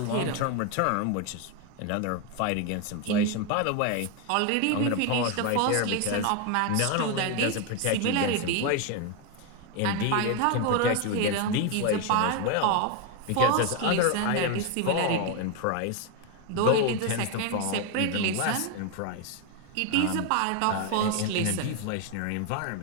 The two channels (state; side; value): different; both; correlation 0.01